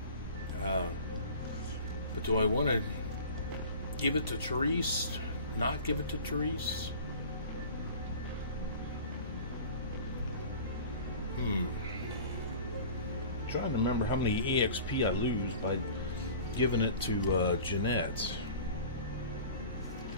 But do I want to give it to Therese? Not give it to Therese? Trying to remember how many EXP I lose by giving it to Jeanette.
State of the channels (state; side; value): inverted; both; correlation -0.41